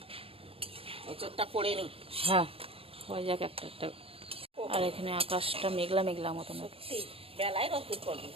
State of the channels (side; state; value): left; late; 0.27 ms